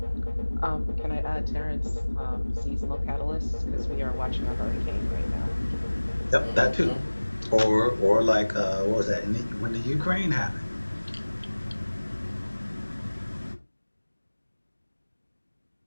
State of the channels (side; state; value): both; inverted; correlation -1.00